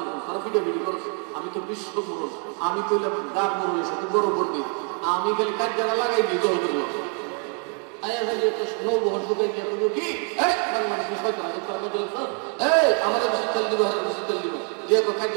তারা ভিডিও করেছে, আমি তো বিশ্ব মুরল, আমি তো গার মুরল সাথে বড় পড়বি, আমি খালি কাজ যারা লাগাই দিই দল করলো নৌবহর ঢুকাই দিয়ে কি আমাদের বেশি তেল দিব, বেশি তেল দিব দিয়ে কাজ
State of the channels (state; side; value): quieter; left; 38.8 dB